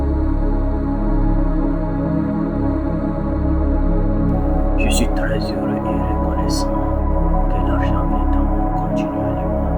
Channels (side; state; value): both; identical; correlation 1.00